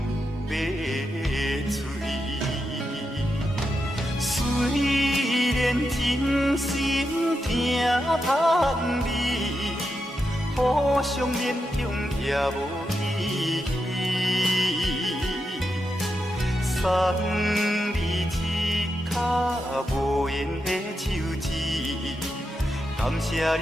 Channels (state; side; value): normal; both; correlation 0.86